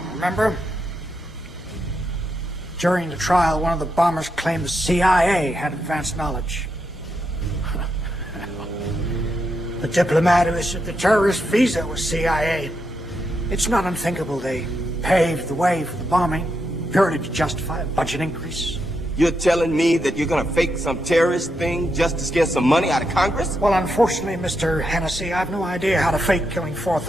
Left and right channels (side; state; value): both; normal; correlation 0.83